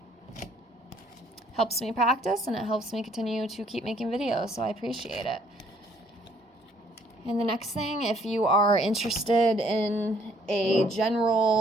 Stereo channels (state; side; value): normal; both; correlation 0.63